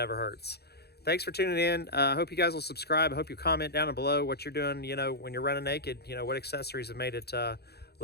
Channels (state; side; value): late; right; 0.47 ms